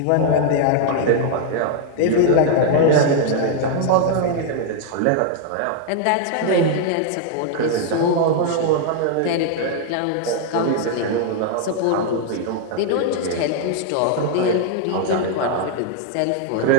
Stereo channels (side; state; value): both; different; correlation 0.00